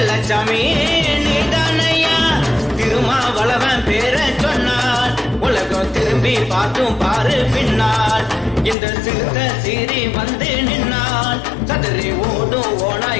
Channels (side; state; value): right; drops out; at 8.8 s